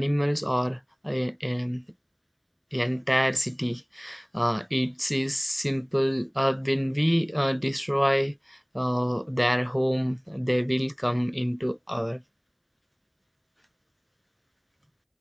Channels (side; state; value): both; identical; correlation 1.00